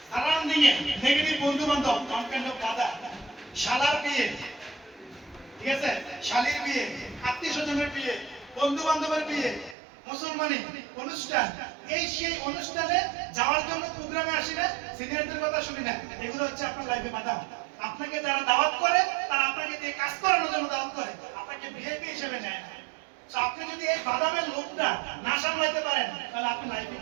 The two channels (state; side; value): drops out; left; at 9.8 s